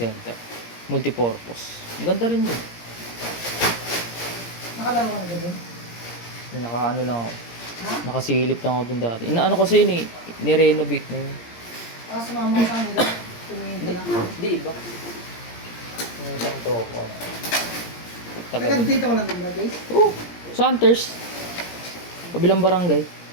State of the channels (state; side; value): late; right; 17 ms